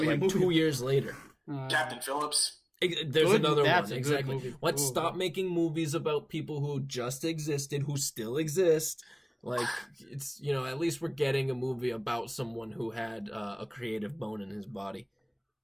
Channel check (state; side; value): identical; both; correlation 1.00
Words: 2 years later. Captain Phillips. There's another one, exactly. Movie. Let's stop making movies about people who just existed, who still exist. It's, at least we're getting a movie about someone who had a creative bone in his body.